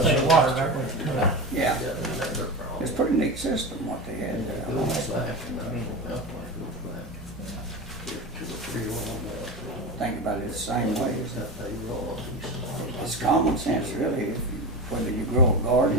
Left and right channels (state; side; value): normal; both; correlation 0.24